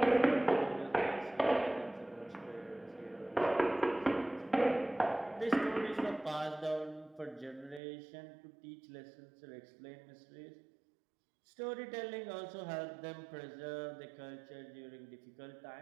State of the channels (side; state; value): left; drops out; at 7.8 s